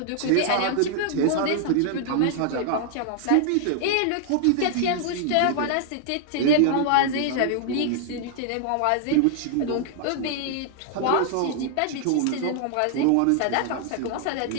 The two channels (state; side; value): different; both; correlation 0.00